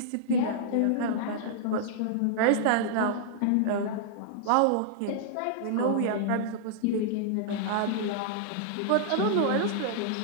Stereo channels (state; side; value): different; both; correlation -0.01